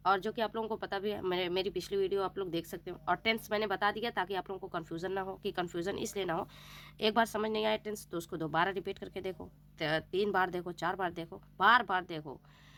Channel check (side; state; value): both; identical; correlation 1.00